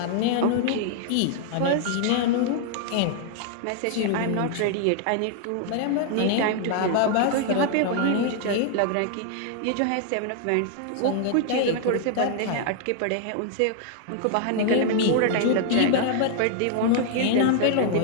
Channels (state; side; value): different; both; correlation 0.00